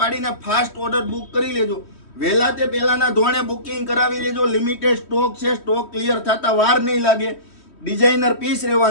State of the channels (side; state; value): right; late; 3.1 ms